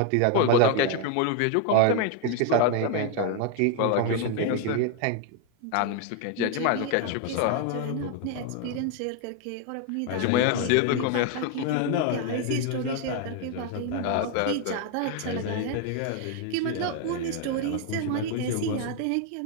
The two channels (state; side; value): different; both; correlation 0.01